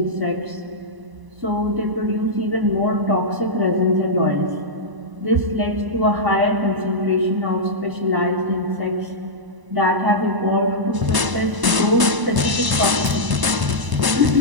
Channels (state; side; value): late; left; 1.0 ms